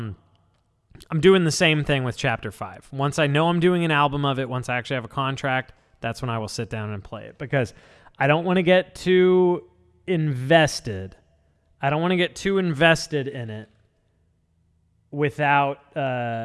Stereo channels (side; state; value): both; identical; correlation 1.00